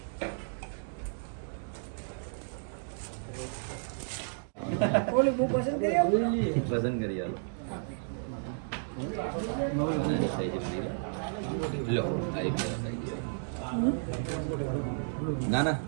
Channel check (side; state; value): left; silent; digital silence